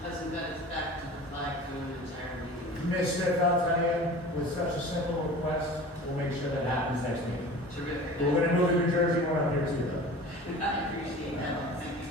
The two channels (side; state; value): both; normal; correlation 0.39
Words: got its back to the flag through an entire meeting. Ms. Smith, I'll tell you, with such a simple request, we'll make sure that happens next meeting. Terrific. We're going to move the New Jersey one up here too, though. I appreciate that. Thank you,